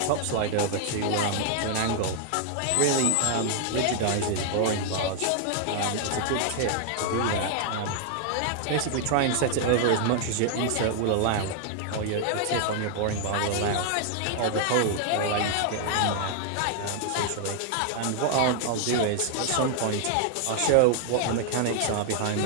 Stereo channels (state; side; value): different; both; correlation 0.00